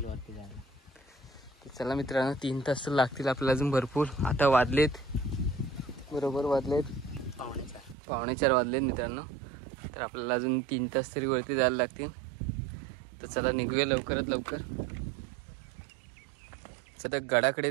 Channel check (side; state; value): left; drops out; at 8.0 s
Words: वरती जायला. चला मित्रांनो, 3 तास लागतील आपल्याला अजून भरपूर. आता वाजलेत बरोबर 4:45 वाजलेत मित्रांनो. तर आपल्याला अजून 3 तास तरी वरती जायला लागतील. तर चला निघूया लवकरात लवकर. सध्या